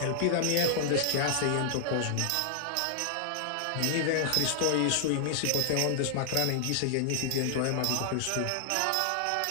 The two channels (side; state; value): both; different; correlation -0.01